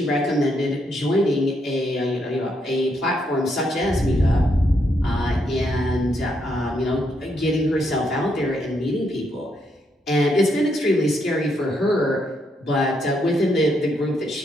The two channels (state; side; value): normal; both; correlation 0.77